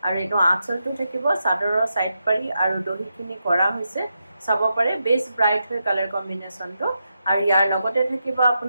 আৰু এটো আঁচলটো থাকিব চাদৰৰ সাইড পাৰি আৰু দহিখিনি কৰা হৈছে চাব পাৰে বেস ব্ৰাইট হয় কালাৰ কম্বিনেশনটো আৰু ইয়াৰ লগতে থাকিব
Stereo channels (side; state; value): both; inverted; correlation -0.86